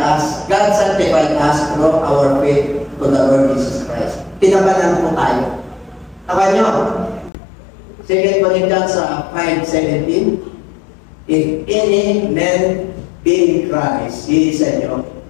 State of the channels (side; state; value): right; drops out; at 7.3 s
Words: us. God sanctified us through our faith to the Lord Jesus Christ. Tinabanan po tayo. Taka nyo, 2 Corinthians 5:17, if any man be in Christ, he is a new